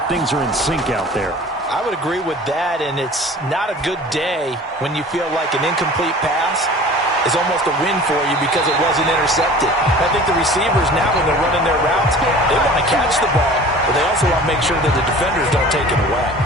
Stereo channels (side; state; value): both; normal; correlation 0.43